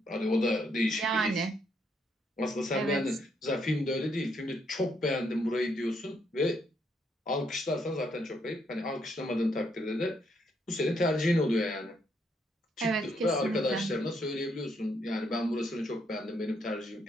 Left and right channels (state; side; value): normal; both; correlation 0.74